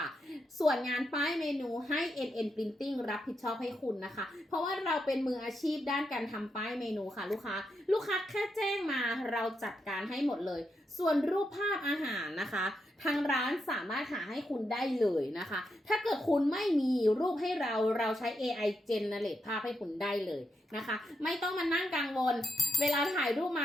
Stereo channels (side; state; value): both; normal; correlation 0.83